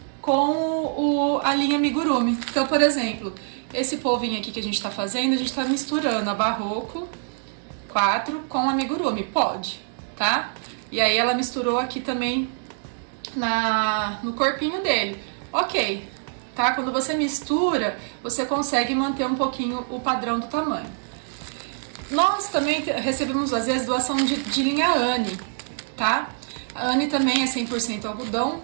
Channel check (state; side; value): silent; left; digital silence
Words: com a linha amigurumi. Então, por exemplo, esse polvinho aqui que a gente tá fazendo, a gente tá misturando a Barroco 4 com a amigurumi. Pode, tá? E aí ela misturou aqui também no corpinho dele. Ok, tá? Quando você mistura, você consegue manter um pouquinho o padrão do tamanho. Nós também recebemos, às vezes, doação de linha Anne, tá? A Anne também é 100% algodão,